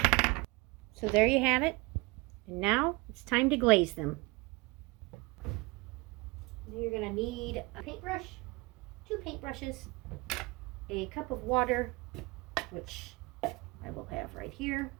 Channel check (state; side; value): quieter; left; 24.4 dB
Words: So there you have it. And now it's time to glaze them. You're going to need a paintbrush, 2 paintbrushes, a cup of water, which I will have right here.